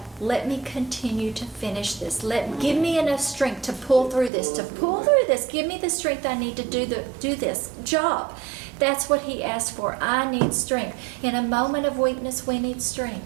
let me continue to finish this. Give me enough strength to pull through this, Give me the strength I need to do this job. That's what he asked for. I need strength. In a moment of weakness, we need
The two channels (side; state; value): left; drops out; at 4.3 s